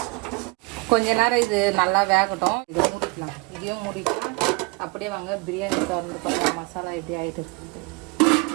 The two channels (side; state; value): left; quieter; 27.8 dB